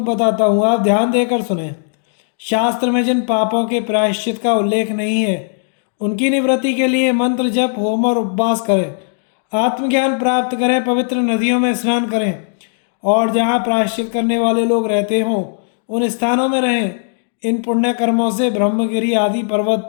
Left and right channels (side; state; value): right; silent; digital silence